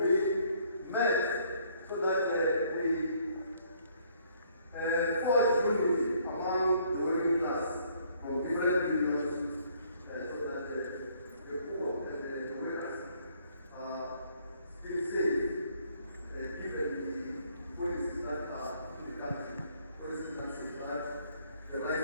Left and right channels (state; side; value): inverted; both; correlation -0.64